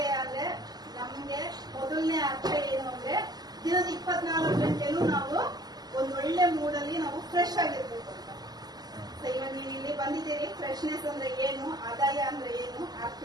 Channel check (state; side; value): late; left; 0.20 ms